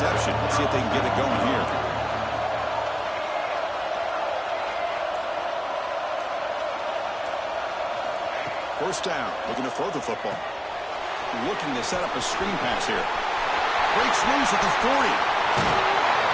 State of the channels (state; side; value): identical; both; correlation 1.00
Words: Let's see if they can get it going here. First down, looking to throw the football. Looking to set up a screen pass here. Breaks loose at the 40.